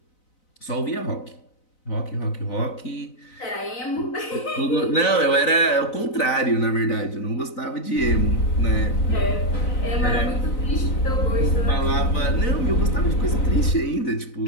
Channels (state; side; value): late; right; 4.0 ms